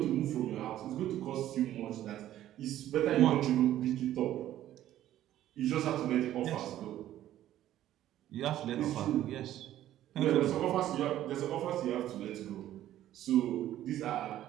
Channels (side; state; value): left; quieter; 12.8 dB